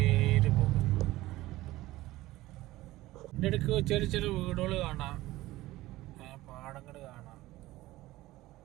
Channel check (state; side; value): quieter; left; 17.5 dB